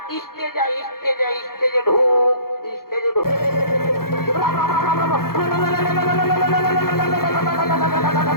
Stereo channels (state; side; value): late; right; 0.93 ms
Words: স্টেজে আয়, স্টেজে আয়, স্টেজে ঢুক, স্টেজে ঢুক।